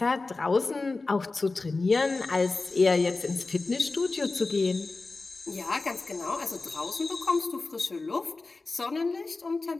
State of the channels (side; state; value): right; quieter; 3.6 dB